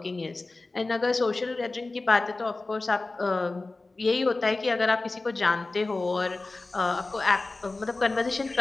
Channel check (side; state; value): right; quieter; 3.3 dB